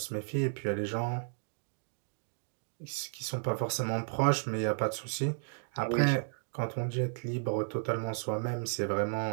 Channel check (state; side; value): silent; left; 55 dB below the other